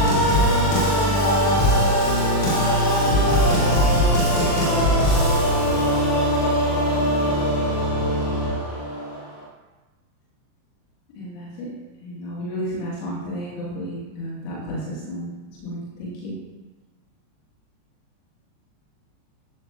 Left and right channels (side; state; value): right; late; 40 ms